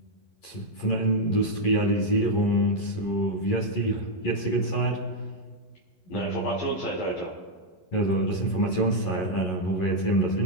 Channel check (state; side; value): late; right; 11 ms